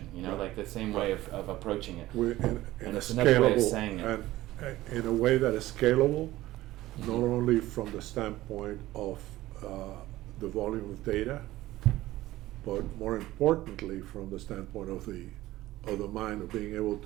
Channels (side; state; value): left; quieter; 16.3 dB